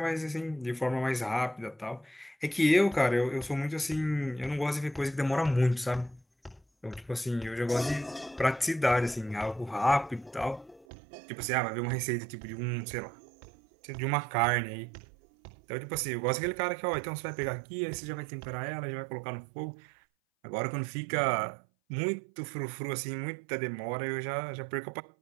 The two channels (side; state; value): left; drops out; at 10.9 s